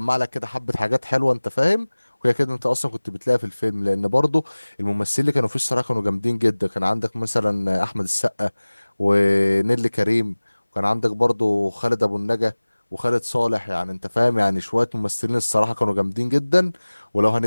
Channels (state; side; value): inverted; both; correlation -1.00